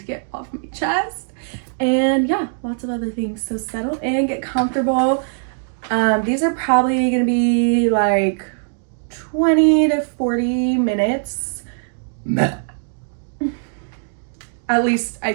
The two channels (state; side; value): silent; left; digital silence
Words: get off my chest. And yeah, lots of other things. So settle in, get comfortable. These are probably gonna be like 20 to 40 minutes. At least I